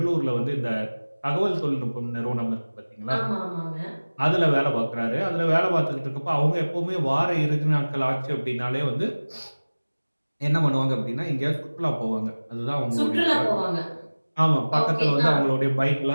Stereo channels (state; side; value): inverted; both; correlation -1.00